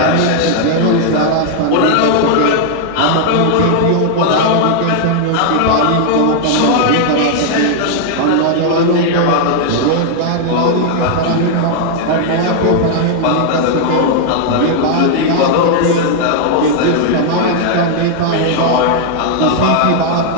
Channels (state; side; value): different; both; correlation 0.00